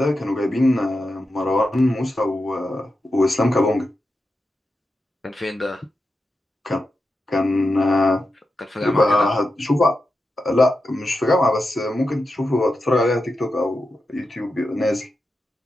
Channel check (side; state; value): both; normal; correlation 0.89